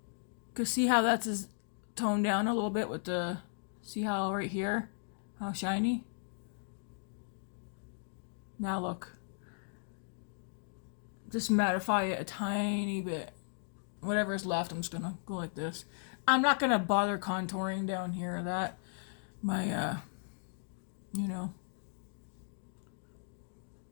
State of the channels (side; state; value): right; silent; digital silence